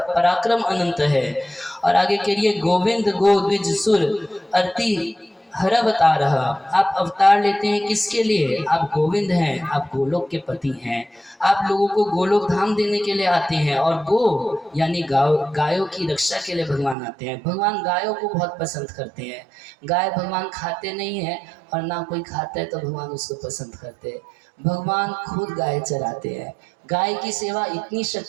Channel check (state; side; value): drops out; left; at 16.9 s